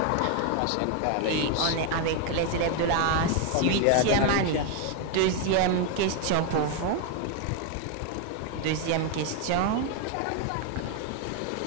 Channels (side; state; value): both; different; correlation 0.00